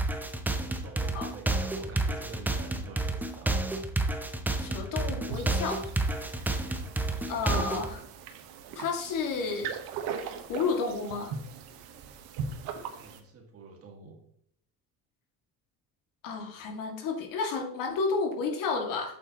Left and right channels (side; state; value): both; normal; correlation 0.39